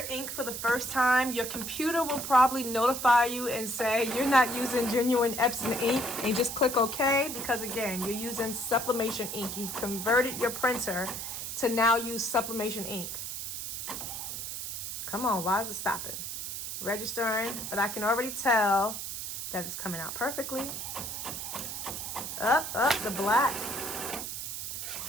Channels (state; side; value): noise; right; hiss, 6 dB below the sound